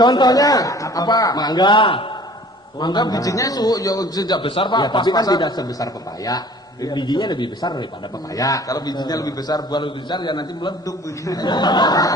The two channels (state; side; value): normal; both; correlation 0.49